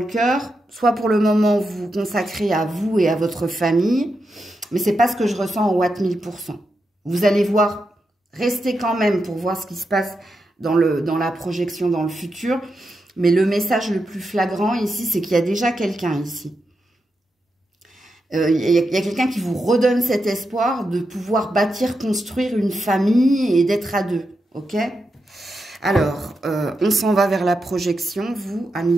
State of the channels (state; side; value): normal; both; correlation 0.86